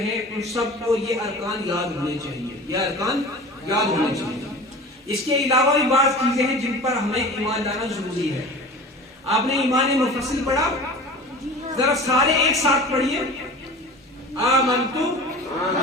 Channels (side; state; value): both; normal; correlation 0.37